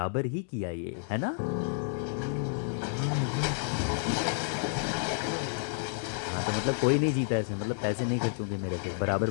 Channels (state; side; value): silent; right; 57 dB below the other